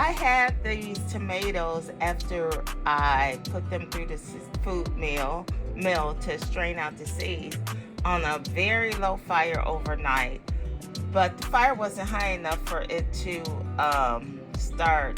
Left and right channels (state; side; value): identical; both; correlation 1.00